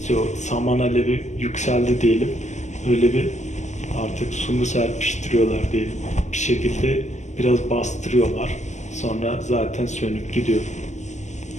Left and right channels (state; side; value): late; right; 0.34 ms